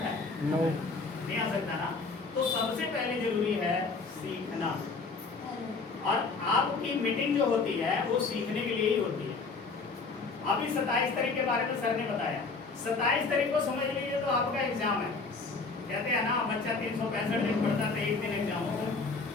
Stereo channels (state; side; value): quieter; right; 4.2 dB